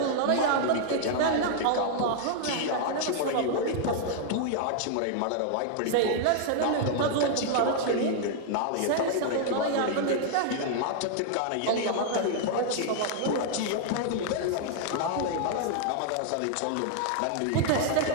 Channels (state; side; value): different; both; correlation -0.01